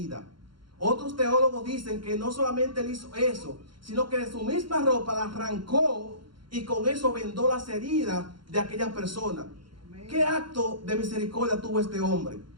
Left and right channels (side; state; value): left; late; 0.73 ms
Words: Otros teólogos dicen que no solamente él hizo eso, sino que de su misma ropa la arrancó y con eso vendó las heridas de aquella persona. ¿Qué acto de misericordia tuvo este hombre?